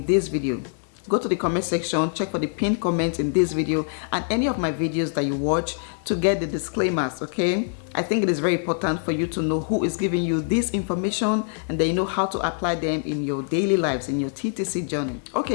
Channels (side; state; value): right; silent; 57 dB below the other